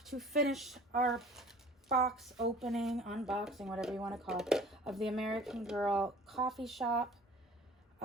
to finish our box opening, unboxing, whatever you want to call it, of the American Girl coffee shop.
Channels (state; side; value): normal; both; correlation 0.47